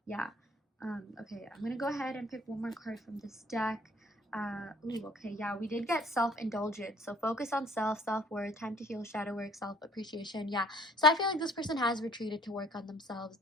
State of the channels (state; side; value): normal; both; correlation 0.56